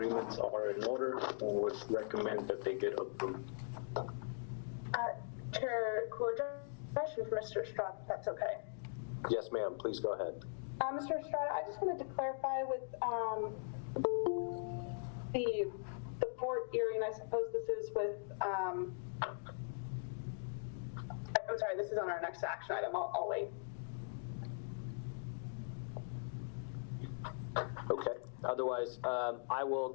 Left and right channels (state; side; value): silent; right; digital silence